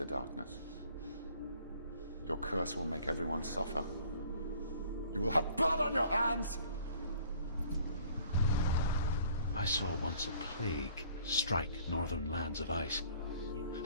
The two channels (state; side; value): inverted; both; correlation -0.56